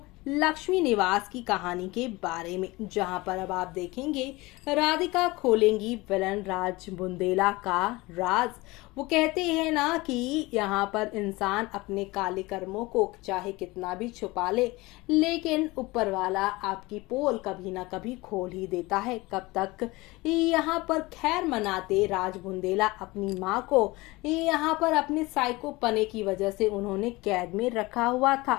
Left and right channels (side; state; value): right; quieter; 21.9 dB